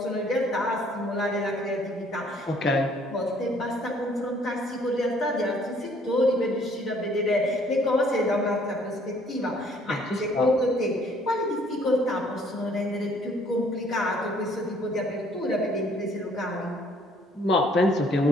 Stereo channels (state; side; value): normal; both; correlation 0.61